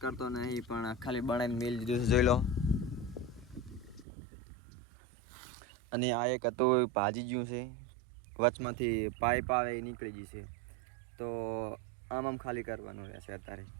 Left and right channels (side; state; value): left; drops out; at 4.0 s